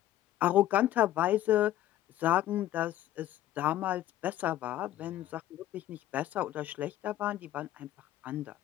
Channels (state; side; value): quieter; right; 13.5 dB